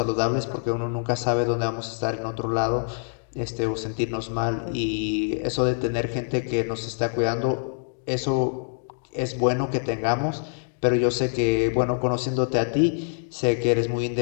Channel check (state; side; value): silent; right; digital silence